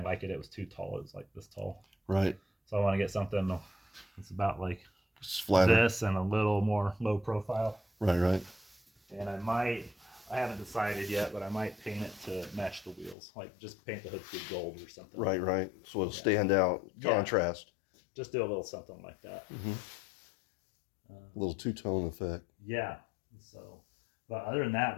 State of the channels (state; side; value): drops out; right; at 13.2 s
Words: like it. It was too tall. It was like this tall. Right. So I want to get something that's about like flatter. this and a little more low profile. Right. And I haven't decided yet, but I might paint it to match the wheels. Like just paint the hood scoop gold or something. Right. So it'll stand out, contrast. Just do a little something like that. A little two-tone effect. Yeah. So, but other than that,